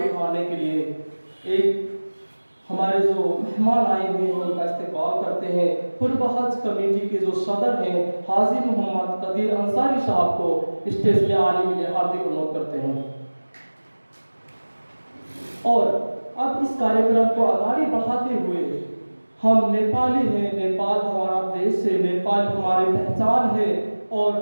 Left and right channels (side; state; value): both; inverted; correlation -1.00